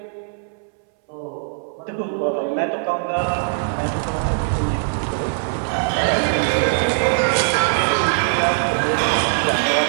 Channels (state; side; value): silent; left; 65 dB below the other